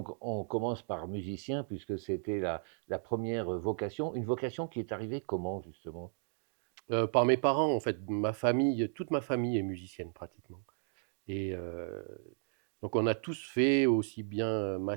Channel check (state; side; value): silent; left; digital silence